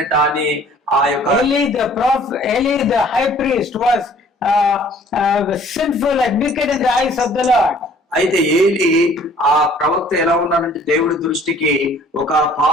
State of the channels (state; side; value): normal; both; correlation 0.55